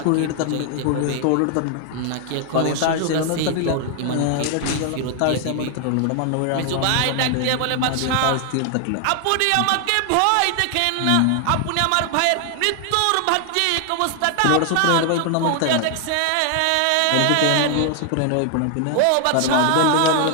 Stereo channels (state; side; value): different; both; correlation 0.00